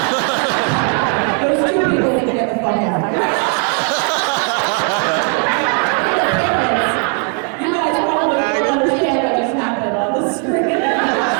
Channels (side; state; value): left; quieter; 39.0 dB